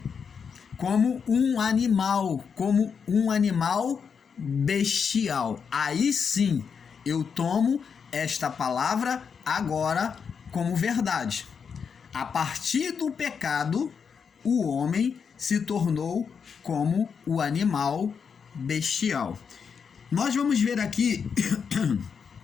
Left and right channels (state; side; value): quieter; right; 6.4 dB